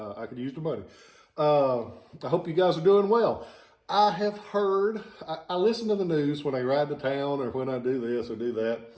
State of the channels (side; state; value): both; identical; correlation 1.00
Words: could use the money. I hope you guys are doing well. I have heard, I listen to the news when I ride to town or when I do this or do that,